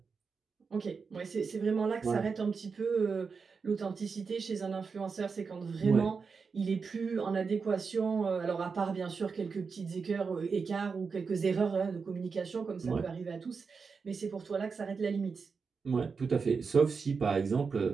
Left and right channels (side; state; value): left; quieter; 5.2 dB